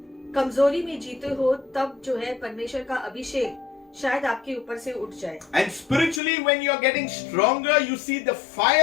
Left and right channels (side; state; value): right; drops out; at 6.2 s